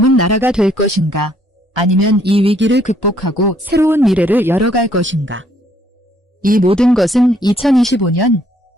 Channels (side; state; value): both; normal; correlation 0.67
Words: 나라가 될 것인가? 아니면 이 위기를 극복하고 새로운 미래를 열어갈 것인가? 이 모든 것은 2025년